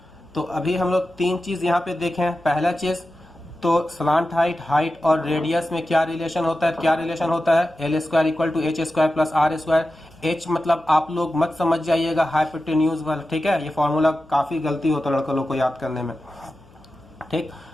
तो अभी हम लोग तीन चीज यहाँ पे देखें। पहला चीज तो स्लांट हाइट और रेडियस में क्या रिलेशन होता है, क्या रिलेशन होता है, L square equal to H square plus R square. H मतलब आप लोग मत समझ जाइएगा हाइपोटेन्यूज वाला, ठीक है, ये फॉर्मूला काफी गलती होता है लड़कों लोग को याद करने में, ठीक,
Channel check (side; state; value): left; noise; hum, 28 dB below the sound